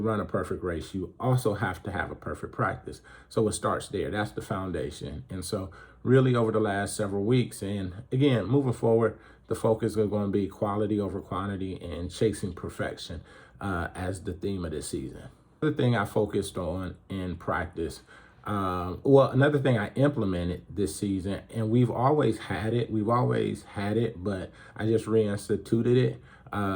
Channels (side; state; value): both; identical; correlation 1.00